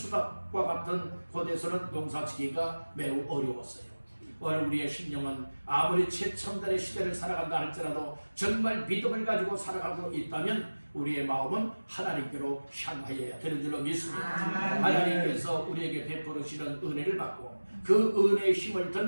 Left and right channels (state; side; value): inverted; both; correlation -1.00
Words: 같은 곳에서는 농사 짓기가 매우 어려웠어요. 오늘 우리의 심령은 아무리 최첨단의 시대를 살아간다 할지라도 정말 믿음을 가지고 살아가고 있다면 우리의 마음은 하나님께로 향하여야 되는 줄로 믿습니다. 하나님께서 우리에게 베풀으시는 은혜를 받고 그 은혜의 힘을